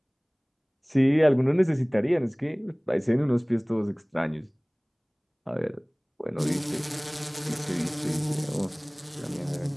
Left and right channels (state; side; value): identical; both; correlation 1.00